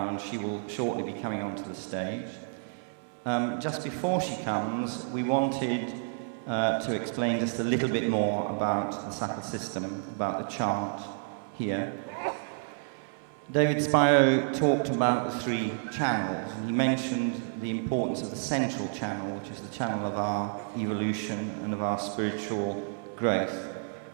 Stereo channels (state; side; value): silent; left; 57 dB below the other